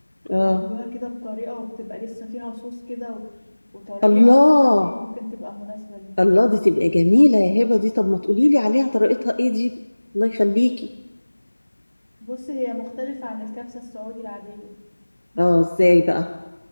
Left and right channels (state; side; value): inverted; both; correlation -1.00